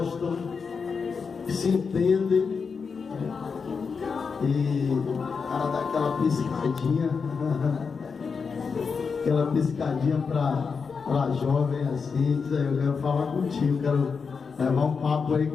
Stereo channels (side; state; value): right; quieter; 5.4 dB